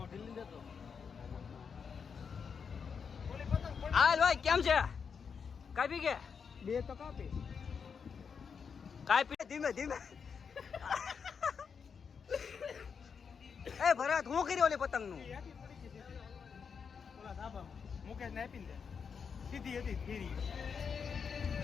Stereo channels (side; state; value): right; quieter; 6.2 dB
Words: હાલ ભાઈ કેમ છે? કાપી કે બે તો કાપી કાપી ધીમે એ ભરત હું કર્યો ઓલી પતંગ નું? ઓલા ધાબામાં મુકેશ ને આપીને દે સીધી હતી ફેરી